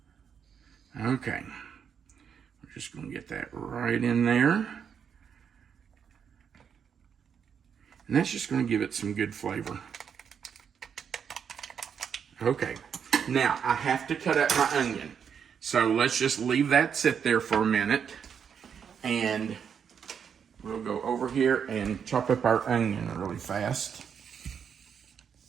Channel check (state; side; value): quieter; left; 7.4 dB